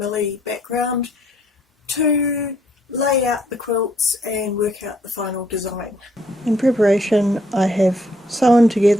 background to lay out the quilts and work out the final design. In preparation, I have sewn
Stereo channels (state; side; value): normal; both; correlation 0.68